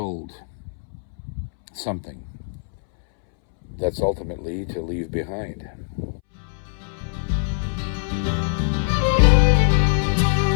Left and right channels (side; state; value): right; silent; 64 dB below the other